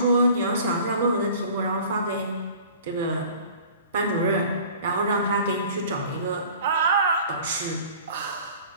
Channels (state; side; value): inverted; both; correlation -0.46